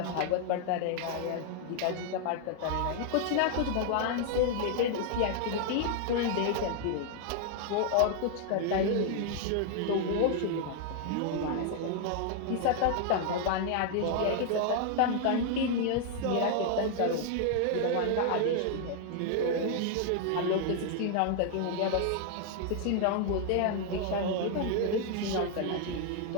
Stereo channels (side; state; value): both; different; correlation 0.00